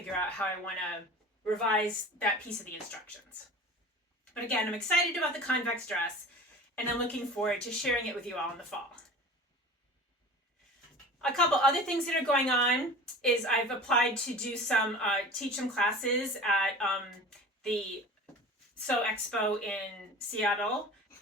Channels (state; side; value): normal; both; correlation 0.37